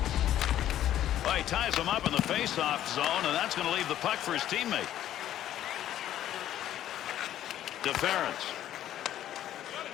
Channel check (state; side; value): quieter; right; 12.1 dB